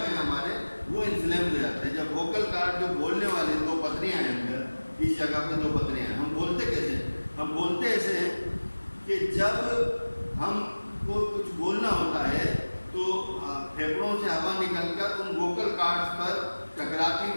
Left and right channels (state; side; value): inverted; both; correlation -1.00